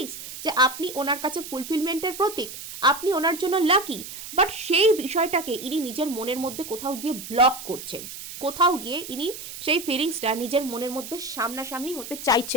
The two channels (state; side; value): noise; right; hiss, 11 dB below the sound